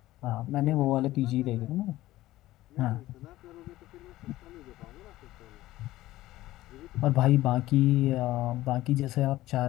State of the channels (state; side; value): quieter; right; 16.2 dB